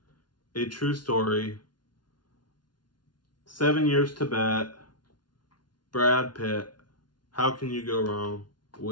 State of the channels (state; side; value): late; right; 0.70 ms